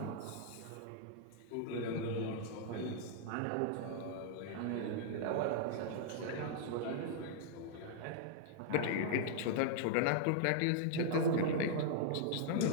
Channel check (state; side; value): different; both; correlation -0.01